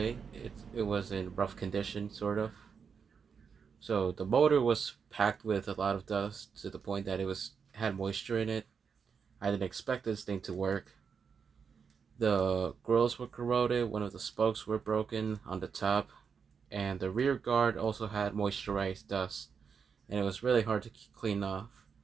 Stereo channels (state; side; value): quieter; left; 6.2 dB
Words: It was in rough condition, sort of. So the motor was packed with a lot of dust to the point that it was had moisture in it. I didn't expect this thing to work. The grills were corroded, one of the spokes were broken on the top, and the rear guard also had moisturized dust, and it was really hard to clean off.